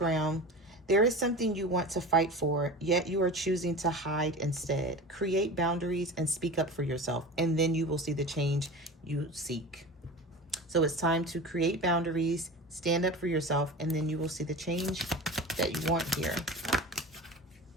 There is something you want to fight for, yet you are choosing to hide instead. Create boundaries and speak up for yourself, and then you will see the change you seek. So it's time to create boundaries, stand up for yourself, and then you will see the change that you want here.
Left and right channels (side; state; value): both; normal; correlation 0.33